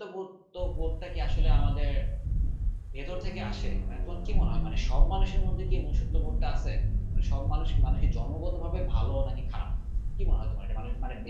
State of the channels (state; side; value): identical; both; correlation 1.00